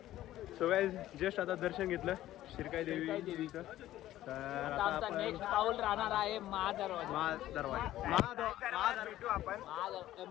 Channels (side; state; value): right; quieter; 14.1 dB